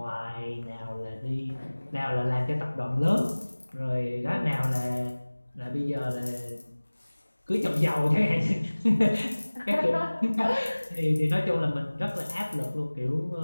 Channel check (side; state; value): both; inverted; correlation -1.00